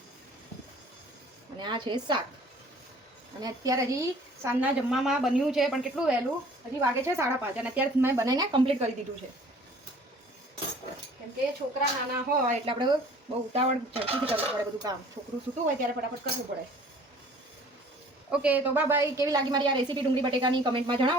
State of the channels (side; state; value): both; normal; correlation 0.51